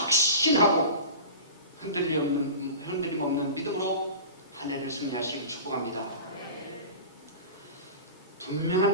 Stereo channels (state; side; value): inverted; both; correlation -0.33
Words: 흔들림 없는 믿음으로 한 해를 승리하시기를 축복합니다.